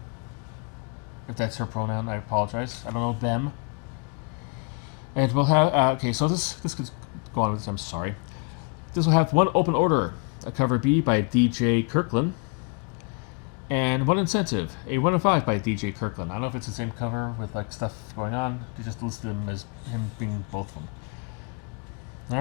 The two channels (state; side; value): quieter; right; 35.1 dB